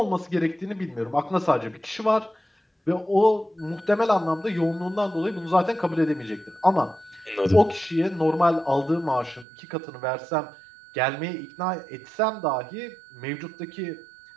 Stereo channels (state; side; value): drops out; left; at 9.5 s